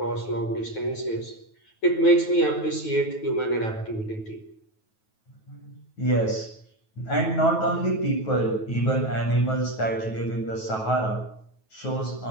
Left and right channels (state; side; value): late; right; 9.2 ms